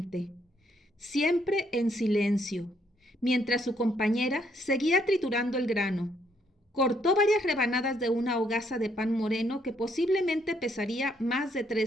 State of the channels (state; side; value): normal; both; correlation 0.71